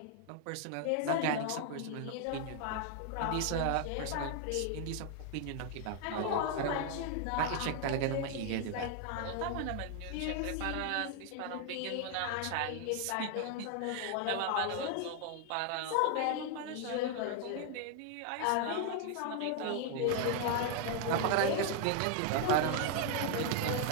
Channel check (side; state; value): both; different; correlation 0.00